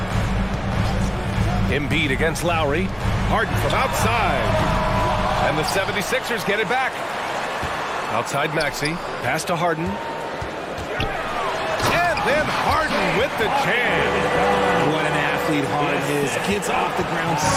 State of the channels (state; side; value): identical; both; correlation 1.00